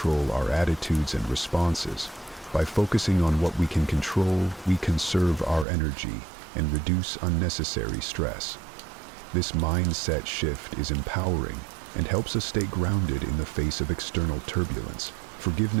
our attitudes and responses. By focusing on what we can control, we conserve our energy and reduce unnecessary stress. This mindset shift is empowering and helps us stay grounded in the face of external turbulence.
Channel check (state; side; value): drops out; left; at 5.7 s